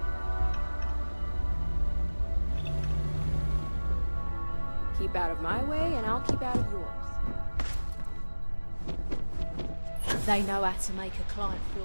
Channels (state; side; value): inverted; both; correlation -1.00